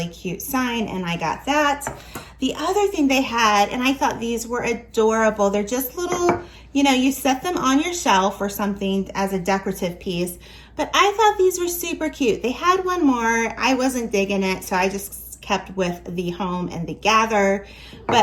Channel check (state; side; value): identical; both; correlation 1.00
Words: cute sign, and I got that. The other thing they had, and I thought these were adorable, they're just little, you know, you set them on your shelf or something as a decorative piece, but I thought these were super cute. They had one more, I wasn't digging it, so I just kept with the home and the gather.